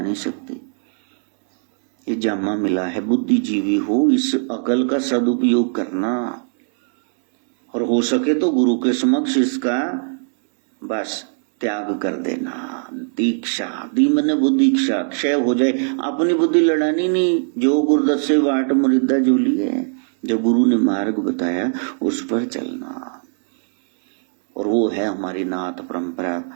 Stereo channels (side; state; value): left; silent; digital silence